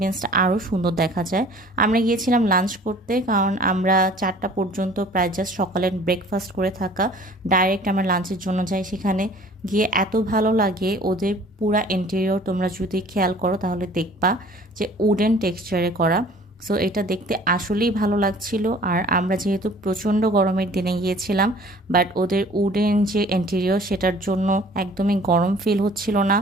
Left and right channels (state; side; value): normal; both; correlation 0.50